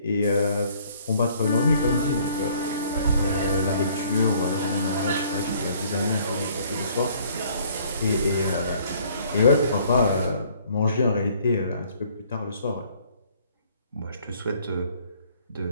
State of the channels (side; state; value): both; inverted; correlation -0.59